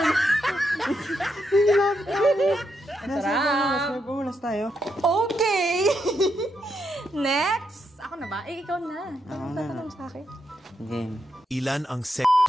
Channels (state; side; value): normal; both; correlation 0.81